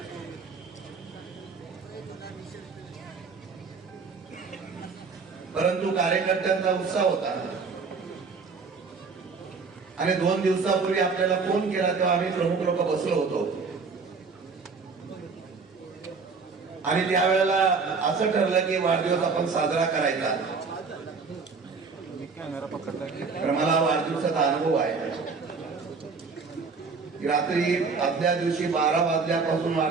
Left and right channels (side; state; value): left; quieter; 4.8 dB